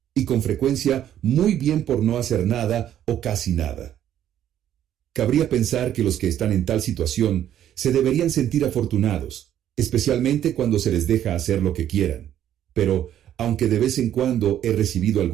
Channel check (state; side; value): quieter; left; 11.0 dB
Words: y con frecuencia muy bien por no hacer nada o casi nada. Cabría pensar que los que están en tal situación se deberían sentir afortunados, especialmente cuando se les deja hacer lo que quieran. Pero, aunque de vez en cuando he recibido